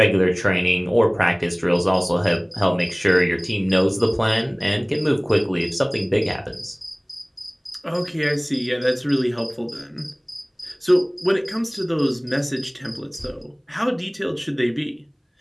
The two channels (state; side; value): identical; both; correlation 1.00